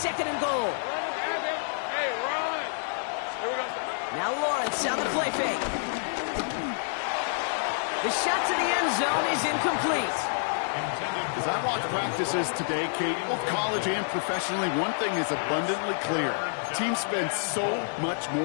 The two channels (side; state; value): right; silent; 55 dB below the other